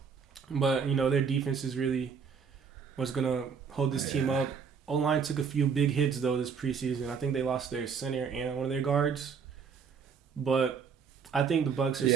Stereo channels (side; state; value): left; quieter; 6.3 dB